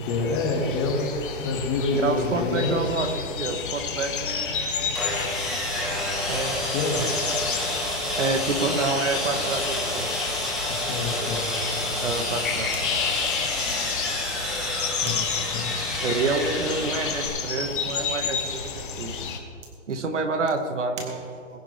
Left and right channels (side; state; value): both; normal; correlation 0.15